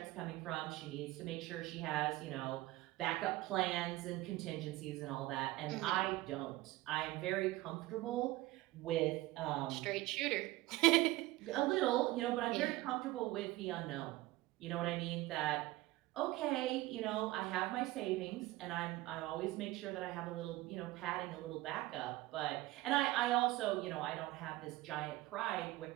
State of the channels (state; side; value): quieter; left; 18.3 dB